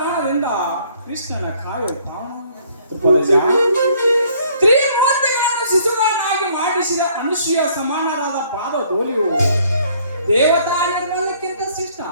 ಕೃಷ್ಣನ ಕಾವ್ಯ ಪ್ರಾಣ ತ್ರಿಮೂರ್ತಿಗಳನ್ನು ಶಿಶುಗಳನ್ನಾಗಿ ಮಾಡಿಸಿದ ಅನುಸೂಯ ಸಮಾನರಾದ ಪಾದ ಧೂಳಿಯು ದೇವತಾ ನಿರ್ಮಲಕ್ಕಿಂತ ಶ್ರೇಷ್ಠ.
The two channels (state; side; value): inverted; both; correlation -0.62